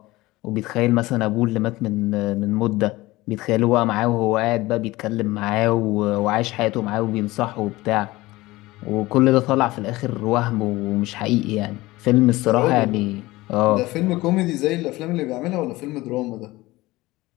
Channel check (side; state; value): right; quieter; 19.5 dB